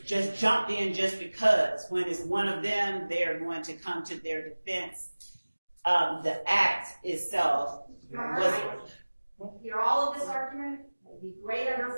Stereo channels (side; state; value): both; inverted; correlation -1.00